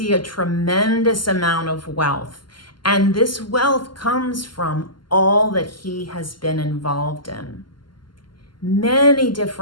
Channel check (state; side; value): late; right; 0.71 ms